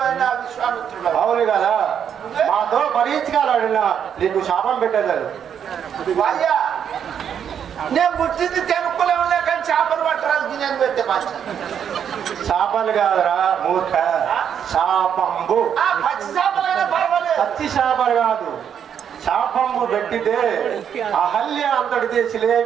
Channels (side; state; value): left; quieter; 8.4 dB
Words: అయిన విశ్వామిత్రుడు. అవును కదా. మాతో పరీక్షకాలాడిన నీకు శాపం పెట్టేదారు. అయ్యా, నేను పుట్టింది తెనుకులే ఉన్నా కానీ చేపలు పట్టడానికి నేను పెట్టే మంచి. శాపాలు కాదురా మూర్ఖ, శాపంబు. పచ్చి చేపలైనా పర్వాలేదు. పచ్చి శాపాలు కాదు, శాపంబు పెట్టితే అహల్య అంతటితే